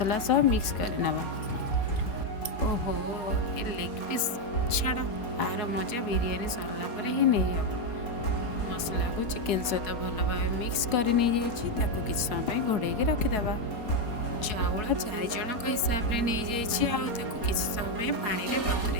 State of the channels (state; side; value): late; right; 4.4 ms